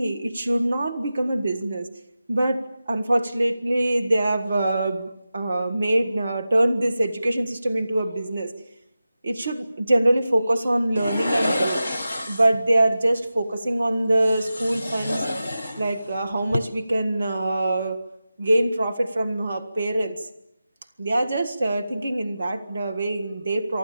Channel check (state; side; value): inverted; both; correlation -0.93